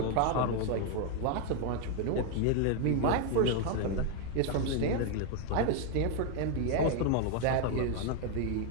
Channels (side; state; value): both; different; correlation 0.01